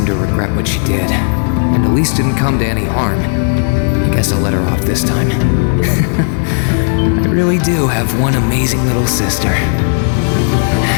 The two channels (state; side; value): silent; right; 57 dB below the other